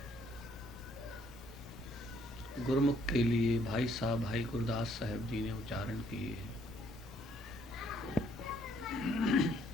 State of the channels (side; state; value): both; normal; correlation 0.67